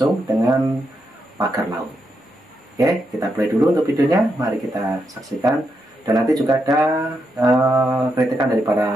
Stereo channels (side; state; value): both; normal; correlation 0.83